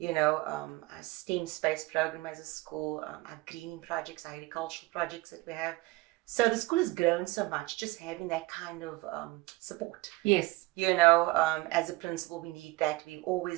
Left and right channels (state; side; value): quieter; left; 21.2 dB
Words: STEM space program as a school, our greening projects, our agricultural projects that we have. So the school has grown so much, just having that kind of support. Yes. As a principal, we need that. We